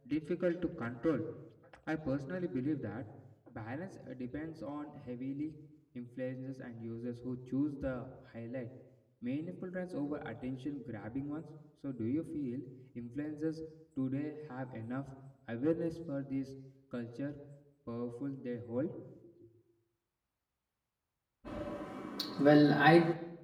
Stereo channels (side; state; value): both; identical; correlation 1.00